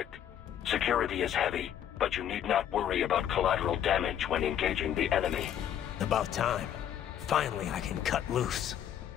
Security is heavy, but you need not worry about collateral damage when engaging the enemy. About time. Finally, I can cut loose.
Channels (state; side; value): quieter; right; 10.1 dB